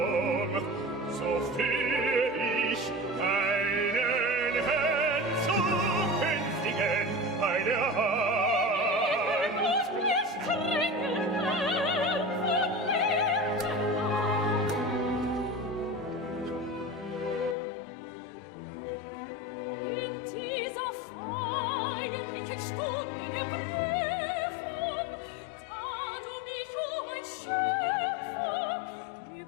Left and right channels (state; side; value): drops out; right; at 17.6 s